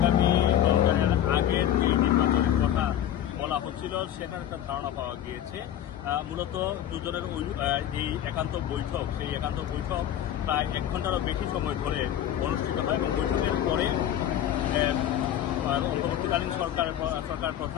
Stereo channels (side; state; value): right; quieter; 11.0 dB